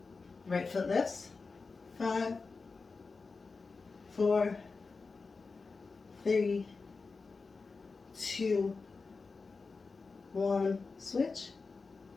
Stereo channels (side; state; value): right; quieter; 4.3 dB